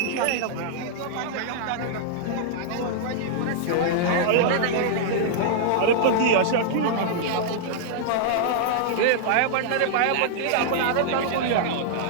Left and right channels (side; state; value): both; different; correlation -0.02